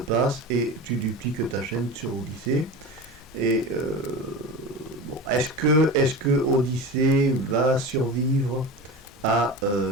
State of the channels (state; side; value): normal; both; correlation 0.29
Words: et tu dupliques ta chaîne sur Odyssée. Et bon, est-ce que Odyssée va survivre à